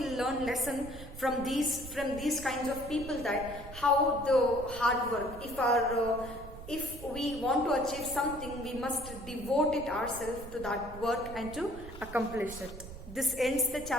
lesson from these kinds of people, that how the hard work. If we want to achieve something, we must devote it ourselves to that work and to accomplish it. This ends the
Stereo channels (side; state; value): right; noise; rumble, 13 dB below the sound